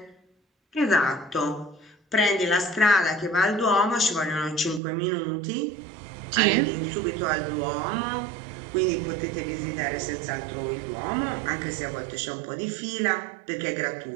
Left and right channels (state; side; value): drops out; left; at 4.8 s